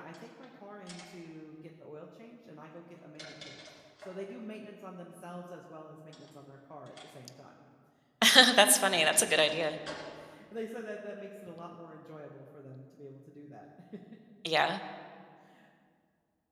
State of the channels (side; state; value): both; identical; correlation 1.00